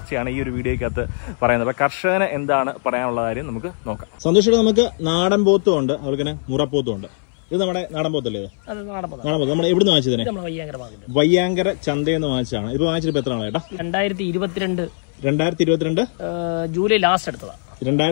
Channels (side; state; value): right; silent; 61 dB below the other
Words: ഈ ഒരു വീഡിയോയ്ക്കകത്ത് പറയുന്നത്. അപ്പോൾ കർഷകന് എന്താണ് പറയാനുള്ള കാര്യം നമുക്ക് നോക്കാം. സന്തോഷേട്ടൻ, നമുക്ക് നാടൻ പോത്തും ഉണ്ട്, അവൾക്ക് തന്നെ മുറപ്പോത്തും ഉണ്ട്. ഇത് നമ്മുടെ നാടൻ പോത്തല്ലേ? നാടൻ പോത്ത്. നമ്മൾ എവിടെ നിന്ന് വാങ്ങിച്ചതിനെ? വയ്യാങ്കര ചന്തയിൽ നിന്ന് വാങ്ങിച്ചതാണ്. ഇപ്പൊ വാങ്ങിച്ചിട്ട് എത്ര ആളാ ചേട്ടാ? 2022 ജൂലൈ ലാസ്റ്റ് എടുത്തതാണ്.